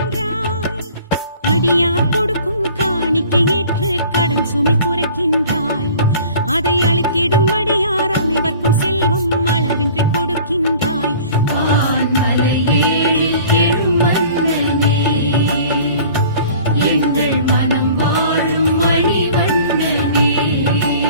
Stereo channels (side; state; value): both; inverted; correlation -0.47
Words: அடியார் கொடுக்கும் காணிக்கை ஏற்று கடன் சுமை குறைக்கின்றாய். அதை அளித்திடும் அடியார் அனைவர்க்கும் செல்வம் அளவின்றி கொடுக்கின்றாய். வான்மலை ஏழில் எழும் மன்னனே, எங்கள் மனம் வாழும் மணிவண்ணனே.